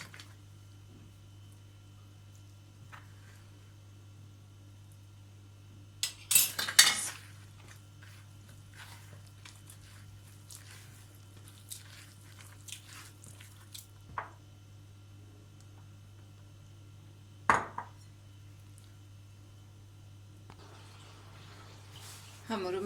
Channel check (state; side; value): identical; both; correlation 1.00